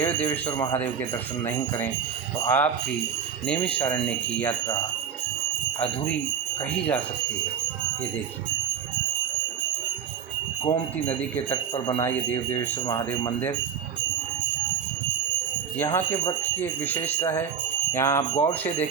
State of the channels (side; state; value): left; quieter; 7.4 dB